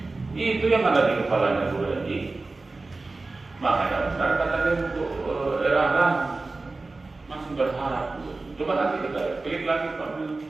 Itu yang ada di kepalanya guru MI. Makanya benar katanya untuk era masih berharap. Coba nanti kita klik lagi Pak.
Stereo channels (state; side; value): quieter; left; 3.5 dB